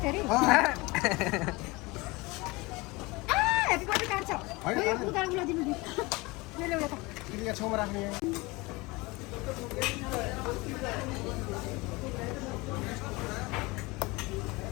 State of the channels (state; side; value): quieter; right; 23.7 dB